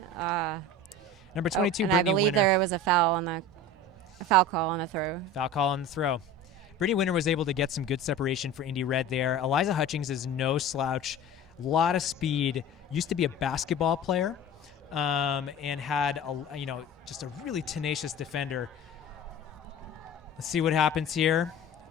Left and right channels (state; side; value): normal; both; correlation 0.36